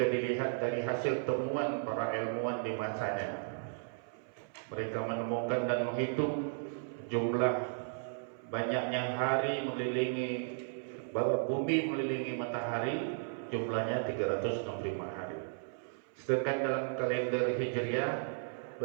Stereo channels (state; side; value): silent; left; 54 dB below the other